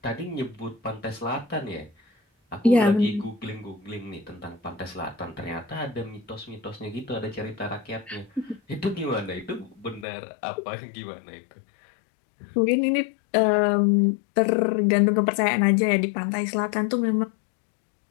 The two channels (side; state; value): right; drops out; at 10.1 s